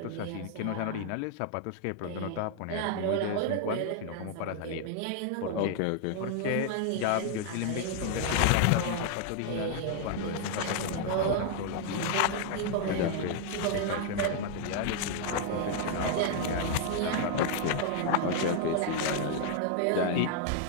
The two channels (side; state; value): both; different; correlation 0.00